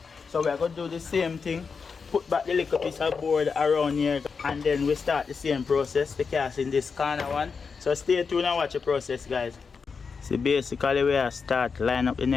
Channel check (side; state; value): right; quieter; 5.3 dB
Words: So we're going to do the same thing. Put back the little piece of board around here and then we start the same process, the cast in this corner one. So stay tuned and watch the process, guys. So basically we are start line up the